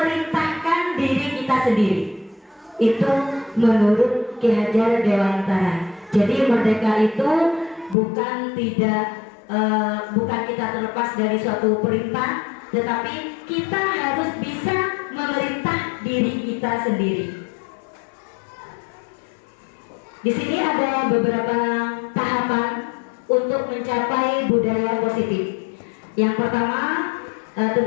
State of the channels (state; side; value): drops out; right; at 8.0 s